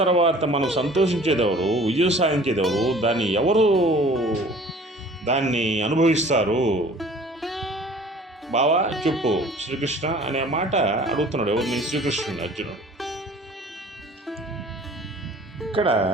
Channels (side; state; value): both; normal; correlation 0.48